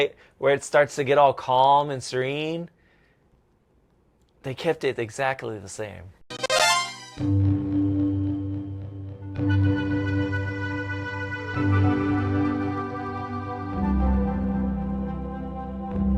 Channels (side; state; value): both; identical; correlation 1.00